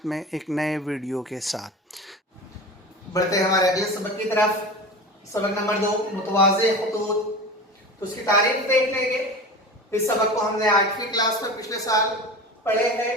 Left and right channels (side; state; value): both; normal; correlation 0.32